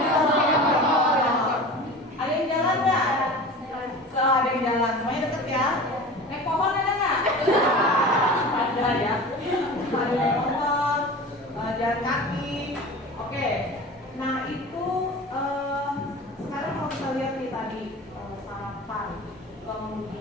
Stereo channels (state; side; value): normal; both; correlation 0.35